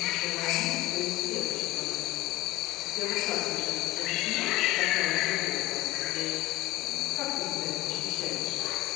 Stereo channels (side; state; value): right; quieter; 18.0 dB